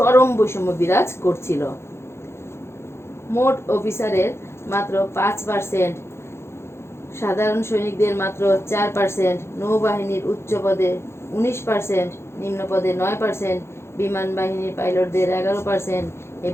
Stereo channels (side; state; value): right; late; 0.12 ms